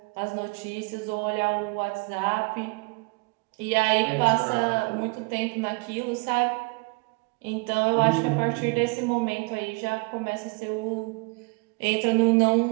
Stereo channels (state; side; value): quieter; left; 30.5 dB